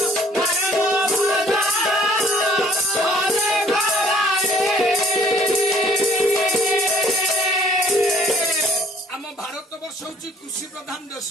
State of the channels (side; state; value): both; normal; correlation 0.58